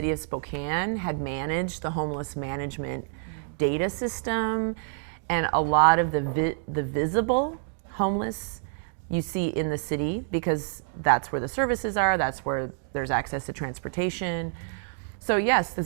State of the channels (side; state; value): left; silent; digital silence